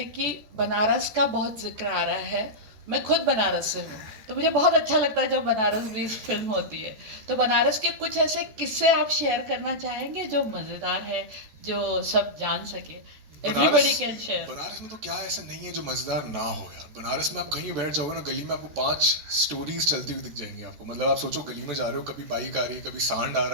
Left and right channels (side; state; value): left; late; 14 ms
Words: कि बनारस का बहुत जिक्र आ रहा है, मैं खुद बनारस से हूँ, तो मुझे बहुत अच्छा लगता है जब बनारस में इस फिल्म होती है। तो बनारस के कुछ ऐसे किस्से आप शेयर करना चाहेंगे जो मज़ेदार है, जो सब जान सके? Everybody can share. बनारस में तो क्या ऐसा नहीं है जो मजेदार ना हो यार। बनारस में आप कहीं बैठ जाओगे ना गली में, आपको 5 स्टोरीज चलती हुई दिख जाएंगी आपको। मतलब आप सोचो गली में जा रहे हो, कभी बाइक आ रही है, कभी सांड आ